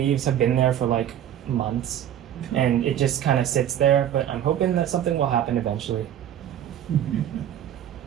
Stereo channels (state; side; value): quieter; left; 10.6 dB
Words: have been there for like months, and it just kind of sits there, but I'm hoping that something will happen eventually.